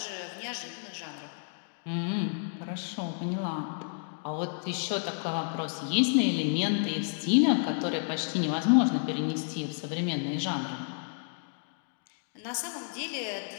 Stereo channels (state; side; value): silent; right; digital silence